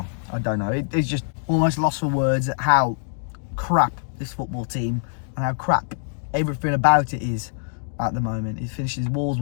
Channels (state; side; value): silent; right; digital silence